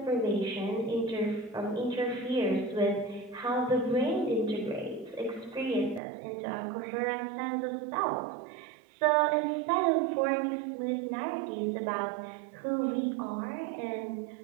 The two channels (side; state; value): left; drops out; at 6.0 s